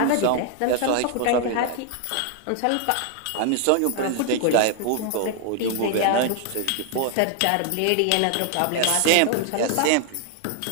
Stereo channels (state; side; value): different; both; correlation 0.00